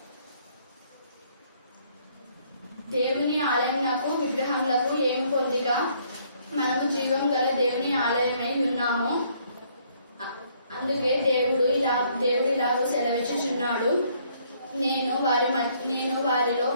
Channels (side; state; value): both; inverted; correlation -0.66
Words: దేవుని ఆలయమునకు విగ్రహములకు ఏమి పొందిక? మనము జీవం గల దేవుని ఆలయమై ఉన్నాము. అందుకే దేవుడు ఇలాగూ సెలవిచ్చుచున్నాడు, నేను